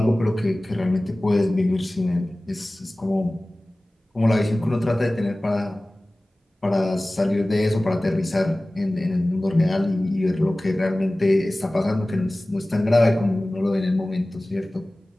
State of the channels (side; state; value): both; normal; correlation 0.98